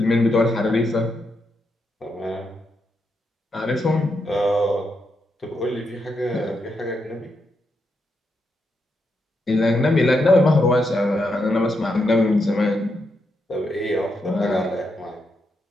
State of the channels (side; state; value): both; normal; correlation 0.82